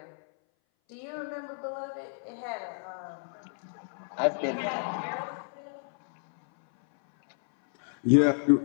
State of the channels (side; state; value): right; silent; 58 dB below the other